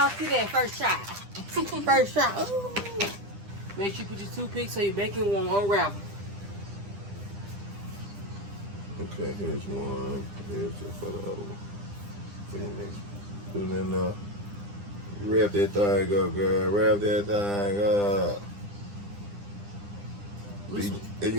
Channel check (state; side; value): late; left; 9.9 ms